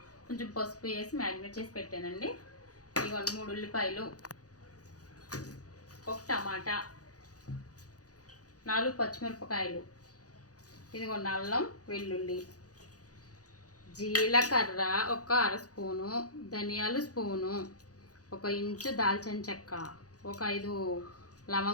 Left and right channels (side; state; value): right; late; 0.67 ms